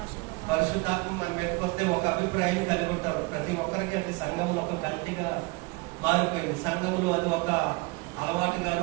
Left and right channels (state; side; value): quieter; left; 25.7 dB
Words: పరిశుద్ధాత్మ మన మీదకి వస్తే ఒక అభిప్రాయం కలిగి ఉంటారు ప్రతి ఒక్కరికి. అంటే సంఘంలో ఒక గట్టిగా మారిపోయింది. సంఘంలో అది ఒక